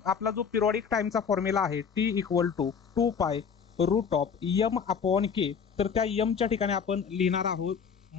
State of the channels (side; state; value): right; quieter; 6.6 dB